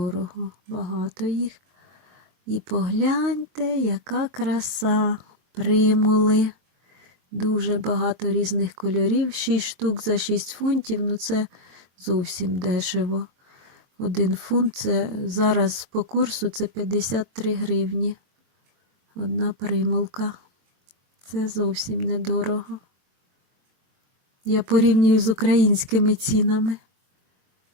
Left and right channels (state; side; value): late; left; 23 ms